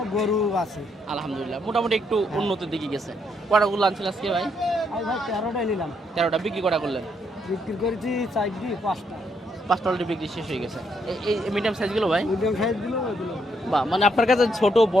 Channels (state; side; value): normal; both; correlation 0.75